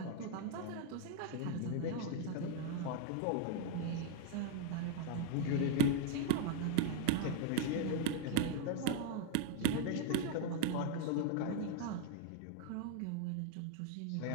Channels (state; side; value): different; both; correlation 0.00